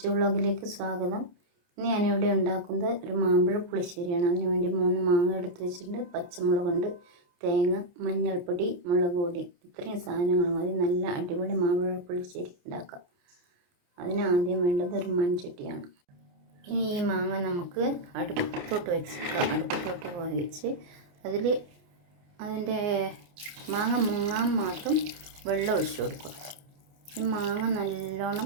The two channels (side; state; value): left; late; 29 ms